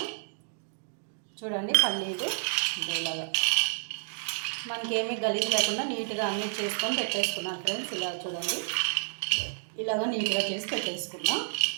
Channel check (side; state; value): left; silent; digital silence